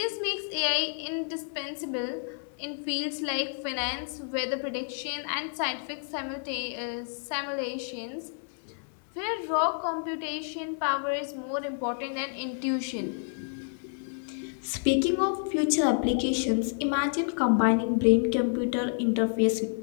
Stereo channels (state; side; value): silent; right; 58 dB below the other